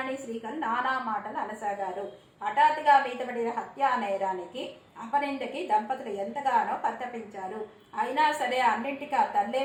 శ్రీకర్ నానా మాటలు అనసాగారు. హఠాత్తుగా మీదపడిన హత్యా నేరానికి, అపనిందకి దంపతులు ఎంతగానో పరితపించారు. అయినా సరే అన్నింటికీ ఆ తల్లే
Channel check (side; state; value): both; identical; correlation 1.00